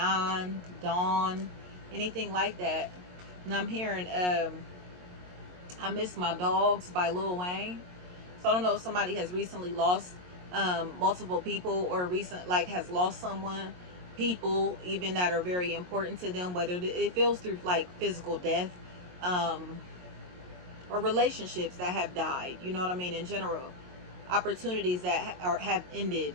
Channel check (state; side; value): late; left; 22 ms